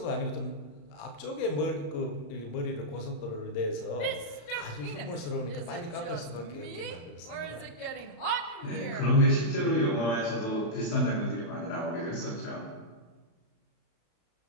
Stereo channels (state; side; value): late; right; 35 ms